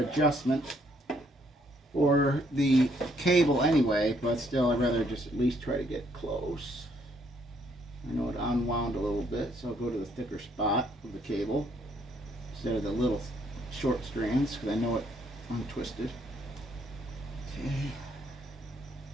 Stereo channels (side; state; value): both; normal; correlation 0.69